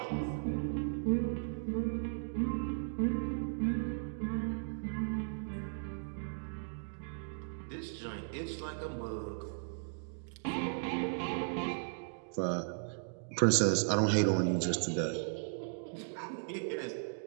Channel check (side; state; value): left; silent; digital silence